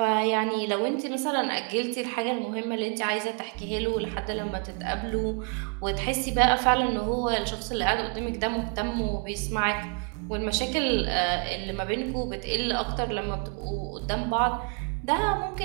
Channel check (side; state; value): left; quieter; 39.5 dB